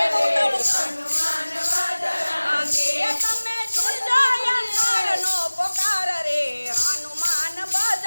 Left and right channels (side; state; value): both; inverted; correlation -1.00